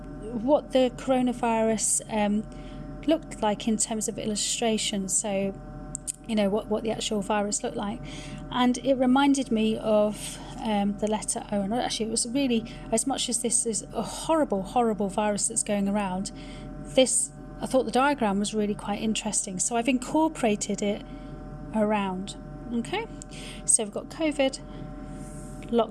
what the coronavirus looked like in terms of illustration, so you know what the actual virus looked like, and it reminded me of the letter O. And actually it was really, as much as this is a horrible virus that's going around, I thought the diagram was really quite interesting, so I've incorporated it around. Okay, so we've got COVID,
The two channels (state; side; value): identical; both; correlation 1.00